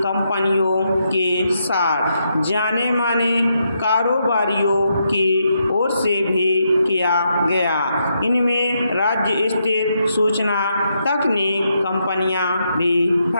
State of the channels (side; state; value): both; inverted; correlation -0.80